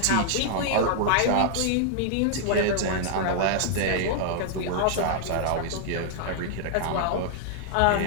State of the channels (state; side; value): different; both; correlation -0.01